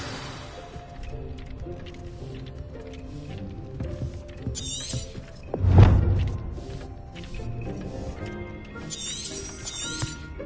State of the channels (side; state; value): both; identical; correlation 1.00